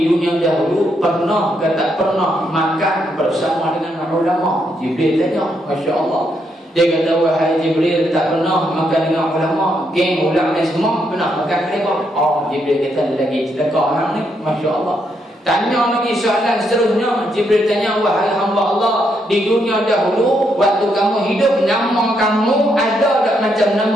dunia dahulu pernah ke tak pernah makan bersama dengan ulama? Jibril tanya, Masya Allah. Dia kata, wahai Jibril, tak pernah makan dengan ulama, geng ulama semua pernah makan mereka. Jibril kata, lagi sedekah orang ni, Masya Allah. Tanya lagi soalan seterusnya, Jibril tanya, wahai hamba Allah, di dunia dahulu waktu kamu hidup, nama kamu ada tak macam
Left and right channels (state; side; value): normal; both; correlation 0.77